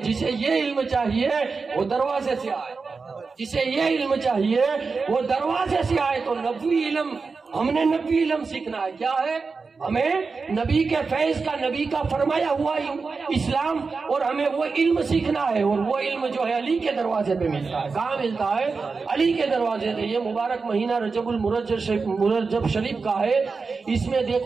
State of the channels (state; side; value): quieter; left; 4.6 dB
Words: جسے یہ علم چاہیے وہ دروازے سے آئے، جسے یہ علم چاہیے وہ دروازے سے آئے۔ تو نبوی علم، ہم نے نبوی علم سیکھنا ہے، کیا ہے؟ ہمیں نبی کے فیض کا، نبی کا فرمایا ہوا اسلام، اور ہمیں وہ علم سیکھنا ہے، اور وہ علم جو ہے علی کے دروازے پہ ملتا ہے۔ کہاں ملتا ہے؟ علی کے دروازے پہ۔ یہ مبارک مہینہ رجب المرجب شریف کا ہے، اس میں